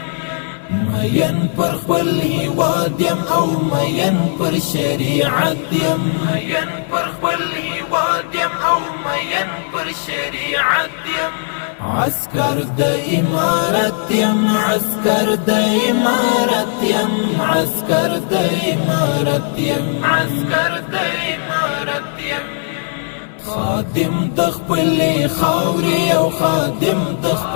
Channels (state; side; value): silent; right; 68 dB below the other